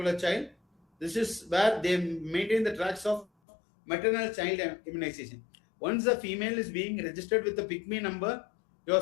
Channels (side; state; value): right; drops out; at 3.2 s